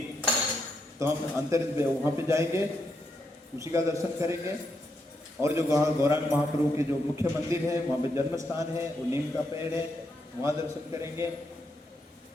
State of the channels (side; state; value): both; normal; correlation 0.80